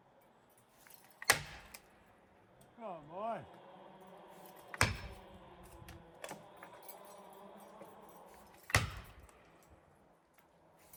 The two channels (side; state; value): both; identical; correlation 1.00